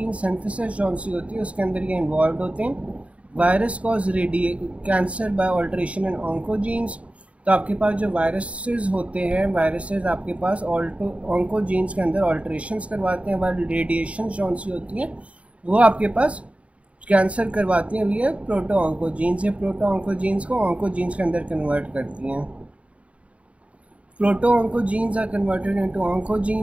सिंथेसिस जो सी होती है उसके अंदर ये इन्वॉल्व होते हैं। Virus cause cancer by alteration in oncogenes. तो आपके पास जो वायरसेस होते हैं, वायरसेस आपके पास ऑन्कोजीन्स के अंदर ऑल्ट्रेशंस करवाते हैं, वाइल रेडिएशन जो सी होती हैं वो आपके पास कैंसर करवाती हैं। ये प्रोटो ऑन्कोजीन्स, ये प्रोटो ऑन्कोजीन्स को ऑन्कोजीन्स के अंदर कन्वर्ट करती हैं। Proto-oncogenes are converted into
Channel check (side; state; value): left; late; 0.064 ms